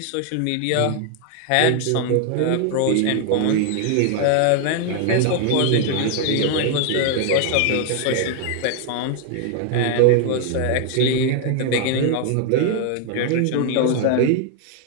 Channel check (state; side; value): different; both; correlation 0.00